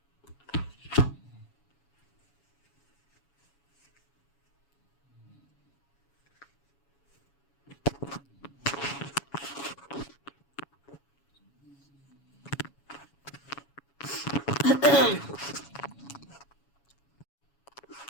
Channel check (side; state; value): right; late; 7.2 ms